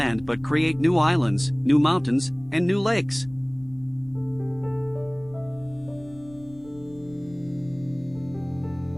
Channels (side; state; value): left; noise; rumble, 22 dB below the sound